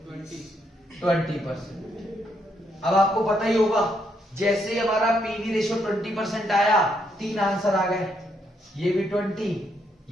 20%। अब आपको पता ही होगा जैसे ही हमारा पीवी रेशियो 20% आया 3 आंसर आ गए, ये भी 20,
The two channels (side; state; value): both; normal; correlation 0.76